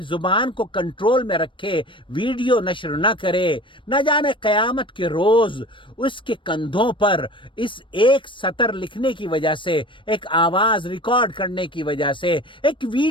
زبان کو کنٹرول میں رکھے، ویڈیو نشر نہ کرے۔ نہ جانے قیامت کے روز اس کے کندھوں پر اس ایک سطر لکھنے کی وجہ سے، ایک آواز ریکارڈ کرنے کی وجہ سے، ایک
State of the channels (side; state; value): right; late; 0.24 ms